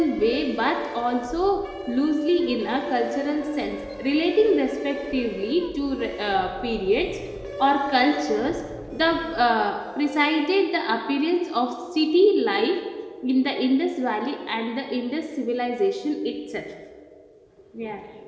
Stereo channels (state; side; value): identical; both; correlation 1.00